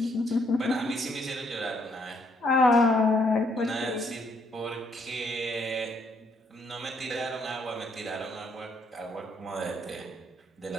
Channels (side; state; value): both; normal; correlation 0.70